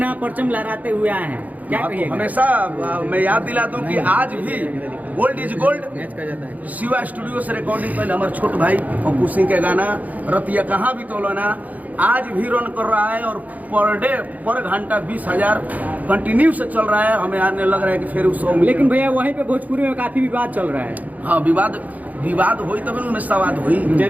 परचम लहराते हुए आए हैं, क्या कहिएगा? हमेशा मैं याद दिला दूं कि आज भी गोल्ड इज गोल्ड मैच का जाता है। शिवा स्टूडियो से रिकॉर्डिंग पहले हमारे छोट भाई अपू सिंह के गाना रतिया कहाँ भी तोलना आज भी रन कर रहा है और पर घंटा 20,000 कंटिन्यू से चल रहा है। हमें आने लग रहा है कि फिर उस लेकिन भैया वहीं पे भोजपुरी में काफी विवाद चल रहा है। हाँ, विवाद हुई तब उनमें सवाद हुई।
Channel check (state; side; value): late; left; 0.077 ms